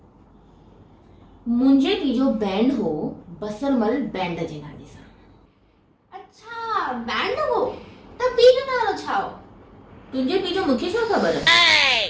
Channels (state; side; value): identical; both; correlation 1.00